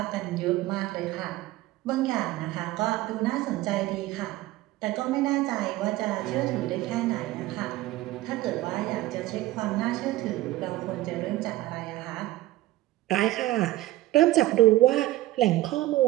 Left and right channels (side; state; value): left; quieter; 16.5 dB